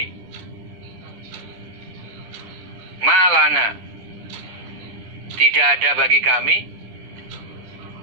Malana, tidak ada bagi kami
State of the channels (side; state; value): left; late; 10 ms